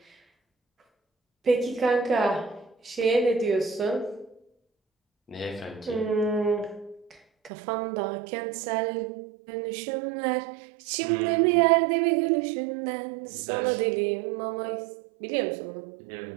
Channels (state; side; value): drops out; left; at 7.5 s